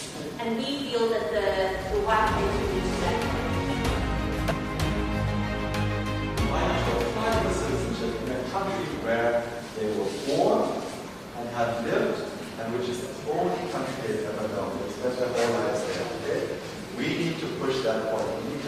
And we feel that the white paper reduces that. Minors will apply for citizenship in a country where they were born and have lived, and which is the only country they've ever known. They spent their whole lives there. Okay? We need to push that point. We need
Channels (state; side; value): identical; both; correlation 1.00